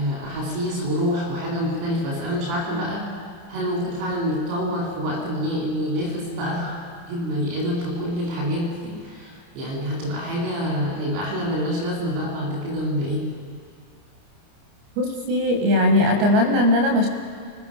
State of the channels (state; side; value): late; left; 29 ms